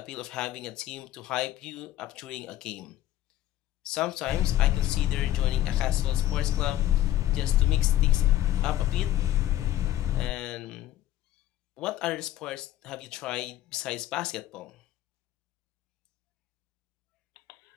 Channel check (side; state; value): right; quieter; 13.5 dB